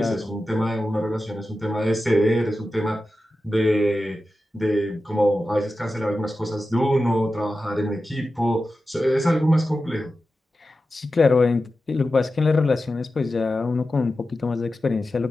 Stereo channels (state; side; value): normal; both; correlation 0.93